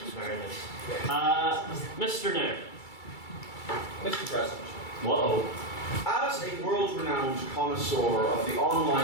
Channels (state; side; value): late; right; 2.3 ms